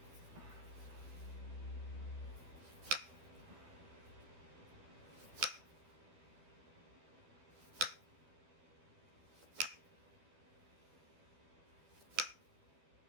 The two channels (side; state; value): left; late; 12 ms